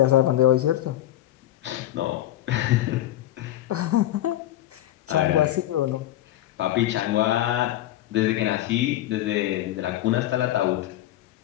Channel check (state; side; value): quieter; right; 13.8 dB